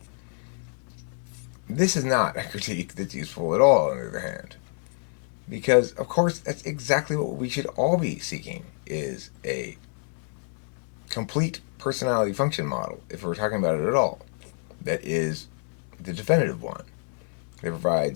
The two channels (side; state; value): right; silent; 60 dB below the other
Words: This is not a critique that's useful at all, on the other hand. Because, of course, that's exactly what we should all be seeking, is a complete personality function model, if we're talking about it at all, that is the definitive one, that